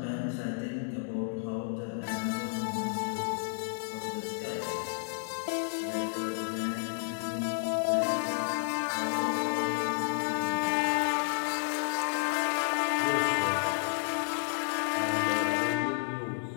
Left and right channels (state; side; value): silent; right; digital silence